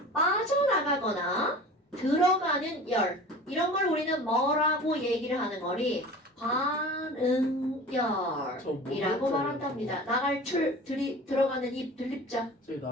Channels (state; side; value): normal; both; correlation 0.39